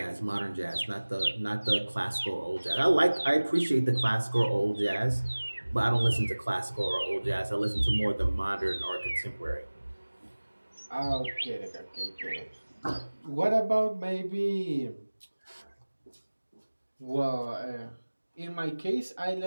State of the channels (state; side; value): inverted; both; correlation -1.00